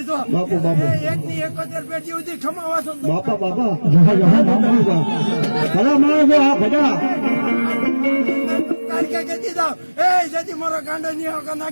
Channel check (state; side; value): inverted; both; correlation -1.00